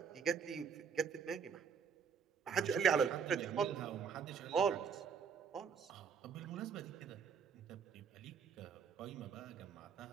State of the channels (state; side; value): quieter; left; 6.5 dB